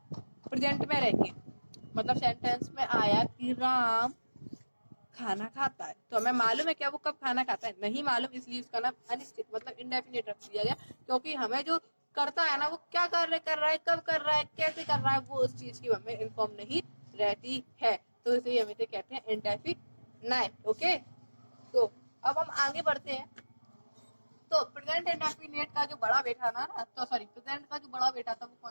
प्रेजेंट में रह के, मतलब सेंटेंस में आया कि राम खाना खाता है, तो हमें मालूम है क्या वो कब खाना खाता है? नहीं मालूम, इसलिए उसका नाम अनिश्चित मतलब इंडेफिनिट रख दिया गया। क्योंकि हमें जो करता है ना वो क्या कार्य कर रहा है, कब कर रहा है, कैसे कर रहा है, वो उस चीज की हमें इन्फॉर्म नहीं रहती है। तो इसे हम इसे कहते हैं इंडेफिनाइट। ओके, तो अब हम आगे बढ़ते हैं। तो प्रेजेंट इंडेफिनिट का जो बड़ा बेटा ना तो सॉरी प्रेजेंट का जो बड़ा बेटा था वो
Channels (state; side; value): inverted; both; correlation -1.00